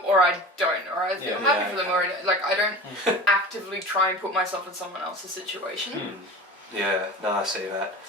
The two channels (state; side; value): normal; both; correlation 0.35